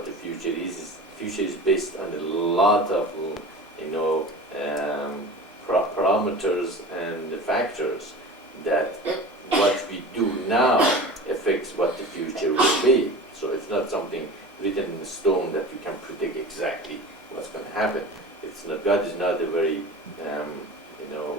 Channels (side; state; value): both; normal; correlation 0.35